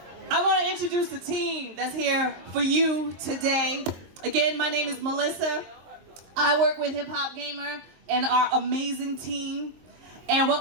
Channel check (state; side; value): late; left; 23 ms